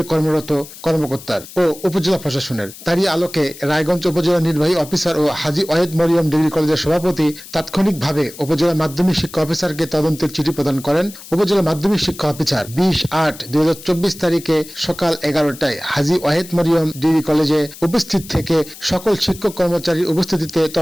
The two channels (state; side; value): noise; left; hiss, 16 dB below the sound